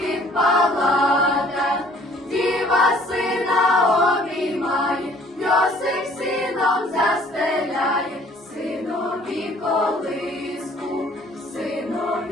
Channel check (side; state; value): both; normal; correlation 0.56